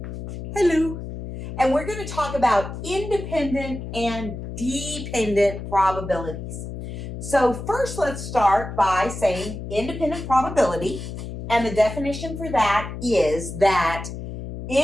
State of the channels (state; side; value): noise; left; hum, 8 dB below the sound